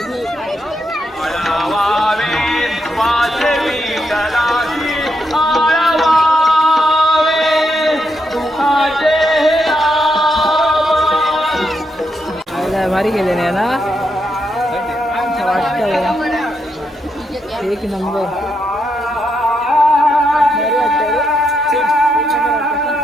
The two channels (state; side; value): normal; both; correlation 0.81